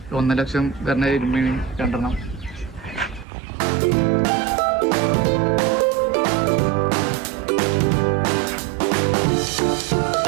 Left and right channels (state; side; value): drops out; left; at 3.2 s